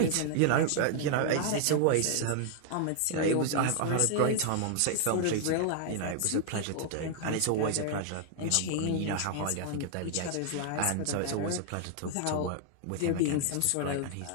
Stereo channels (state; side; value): different; both; correlation 0.00